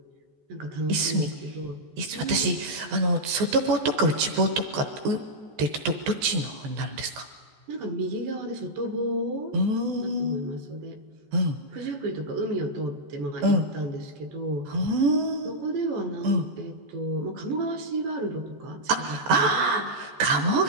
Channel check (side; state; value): left; late; 14 ms